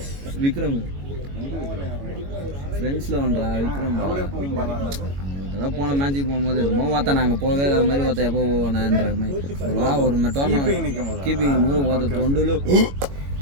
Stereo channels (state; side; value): late; left; 21 ms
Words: விக்ரம் ஃப்ரெண்ட்ஸில் வந்தா விக்ரம் அவரே போகும் பாலாண்டாரு. அதெல்லாம் போன மேட்ச்சுக்கு போகும்போது என்னமோ பார்த்தா நாங்கள் போகவே இல்லாத மாதிரி பார்த்தா எப்போ போவேன்ற மாதிரி ஒரு டோர்னமெண்ட் நிற்கும் போது கீப்பிங் போது பார்த்த தொண்டில்